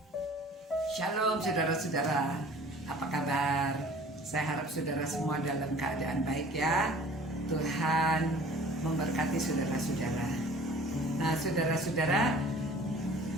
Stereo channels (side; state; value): both; normal; correlation 0.48